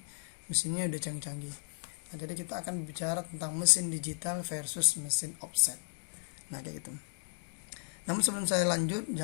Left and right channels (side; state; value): right; silent; digital silence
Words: mesinnya udah canggih-canggih. Nah, jadi kita akan bicara tentang mesin digital versus mesin offset. Nah, kayak gitu. Namun sebelum saya lanjut,